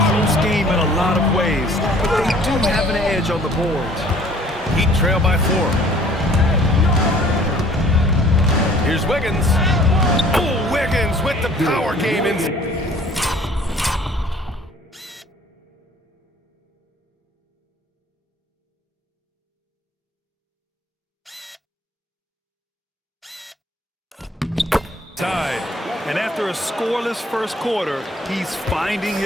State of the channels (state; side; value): normal; both; correlation 0.54